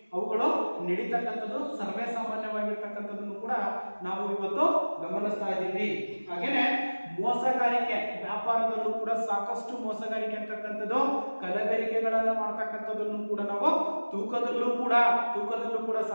ಅವುಗಳು ನಡೀತಕ್ಕಂಥದ್ದು ಸರ್ವೇ ಸಾಮಾನ್ಯವಾಗಿರ್ತಕ್ಕಂಥದ್ದನ್ನು ಕೂಡ ನಾವು ಇವತ್ತು ಗಮನಿಸ್ತಾ ಇದ್ದೀವಿ. ಹಾಗೇನೆ ಮೋಸಗಾರಿಕೆ ವ್ಯಾಪಾರದಲ್ಲೂ ಕೂಡ ಸಾಕಷ್ಟು ಮೋಸಗಾರಿಕೆ ಅಂತಕ್ಕಂಥದ್ದು, ಕಲಬೆರಕೆಗಳನ್ನು ಮಾಡ್ತಕ್ಕಂಥದ್ದನ್ನು ಕೂಡ ನಾವು ತೂಕದಲ್ಲೂ ಕೂಡ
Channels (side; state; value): both; inverted; correlation -1.00